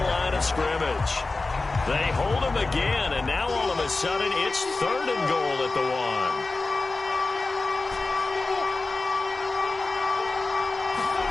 line of scrimmage. They hold him again, and now all of a sudden it's 3rd and goal at the 1.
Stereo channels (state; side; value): quieter; right; 3.5 dB